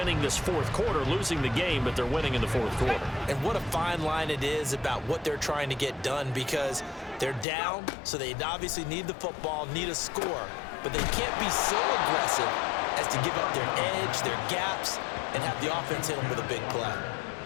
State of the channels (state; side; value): drops out; right; at 7.5 s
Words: this 4th quarter, losing the game, but they're winning in the 4th quarter. And what a fine line it is about what they're trying to get done, because they're down, so they obviously need the football, need a score, but they can't be so aggressive as to give up their edge, their gaps, and have the offense hit them with a big play.